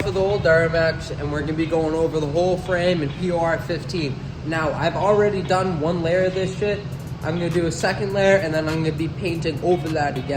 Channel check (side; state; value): both; identical; correlation 1.00